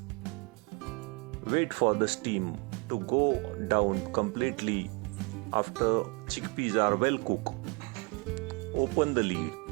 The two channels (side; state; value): left; quieter; 31.2 dB